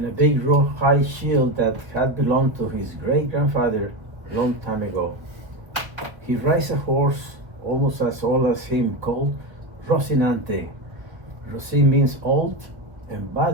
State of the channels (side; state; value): left; late; 1.1 ms